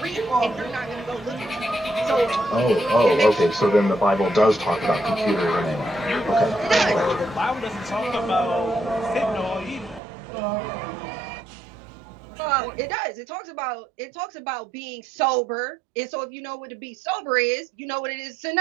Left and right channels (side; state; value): left; drops out; at 10.0 s